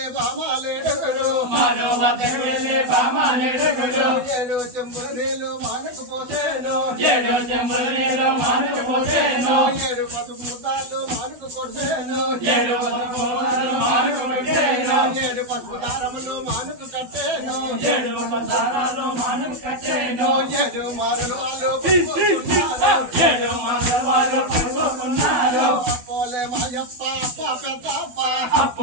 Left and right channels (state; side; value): late; left; 12 ms